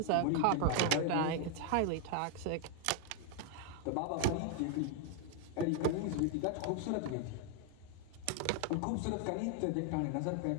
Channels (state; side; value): different; both; correlation 0.00